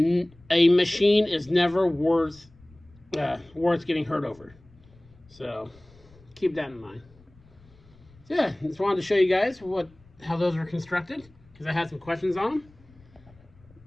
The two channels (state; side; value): noise; left; rumble, 27 dB below the sound